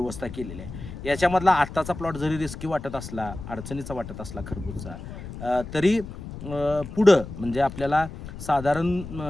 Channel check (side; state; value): left; noise; rumble, 11 dB below the sound